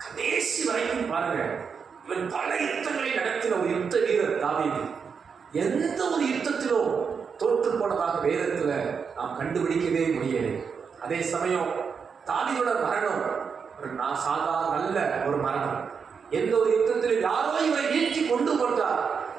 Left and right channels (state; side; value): quieter; left; 6.1 dB